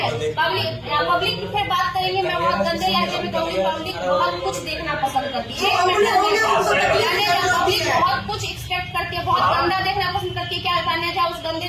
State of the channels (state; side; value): identical; both; correlation 1.00